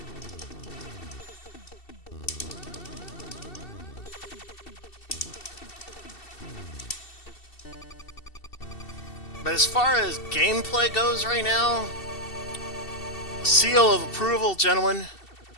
But as far as gameplay goes right now, seal of approval, gentlemen.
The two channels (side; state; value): right; late; 2.7 ms